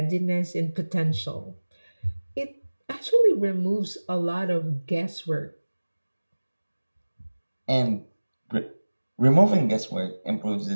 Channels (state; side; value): inverted; both; correlation -1.00